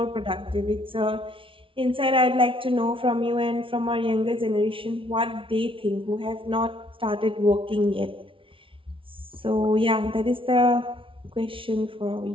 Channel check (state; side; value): late; left; 0.25 ms